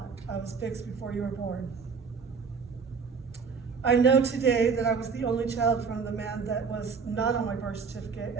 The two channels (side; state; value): left; quieter; 5.5 dB